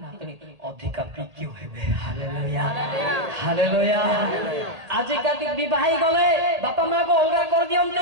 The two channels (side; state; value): left; late; 1.8 ms